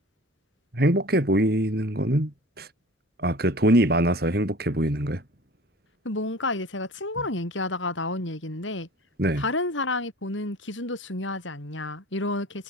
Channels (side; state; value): both; normal; correlation 0.42